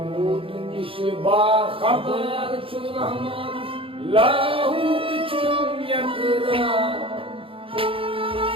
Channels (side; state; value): left; late; 0.26 ms